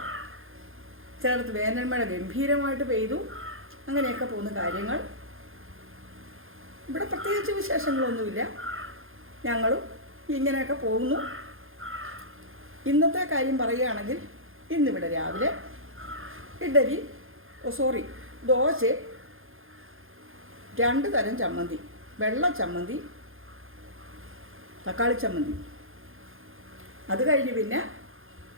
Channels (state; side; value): late; left; 0.60 ms